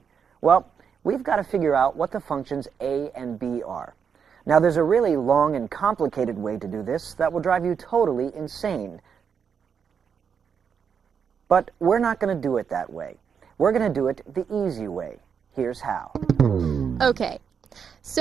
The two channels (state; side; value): quieter; left; 6.9 dB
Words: Well, we've got to figure out what the functions a and b are. Now, there's a really long and complicated way to do this that will drive you totally insane. But we're not going to do it that way. We're going to do it the easy way. Here's how. Okay,